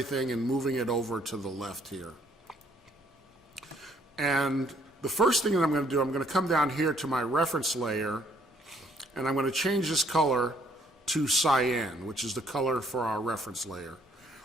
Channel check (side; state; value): both; normal; correlation 0.65